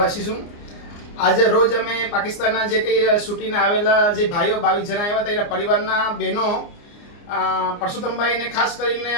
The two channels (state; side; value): late; right; 29 ms